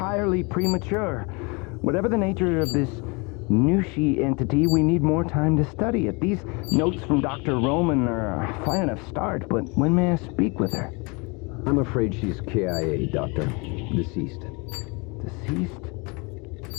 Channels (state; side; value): quieter; right; 29.4 dB